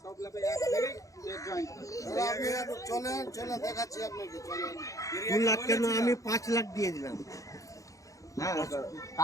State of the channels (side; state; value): right; late; 0.16 ms